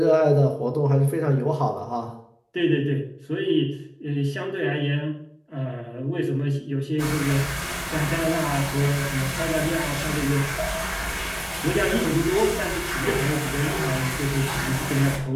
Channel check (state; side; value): identical; both; correlation 1.00